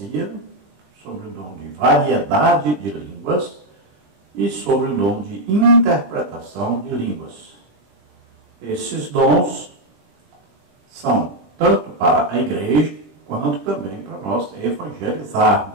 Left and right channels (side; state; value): left; late; 20 ms